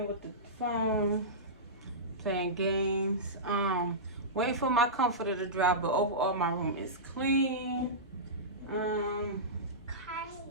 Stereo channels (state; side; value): normal; both; correlation -0.17